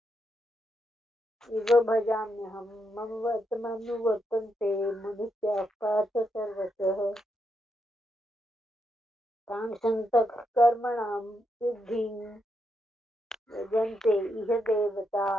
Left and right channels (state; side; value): normal; both; correlation 0.81